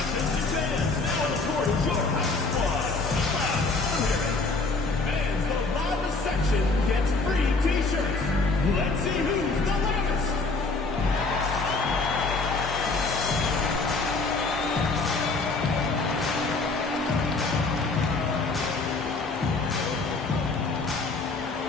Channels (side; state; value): right; quieter; 3.7 dB